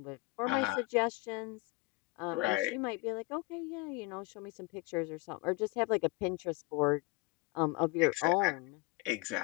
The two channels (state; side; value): quieter; right; 24.1 dB